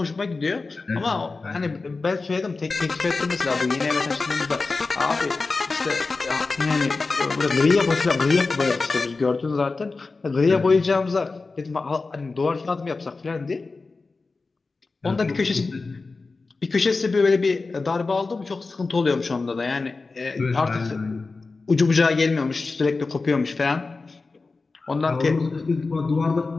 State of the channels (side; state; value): right; quieter; 3.9 dB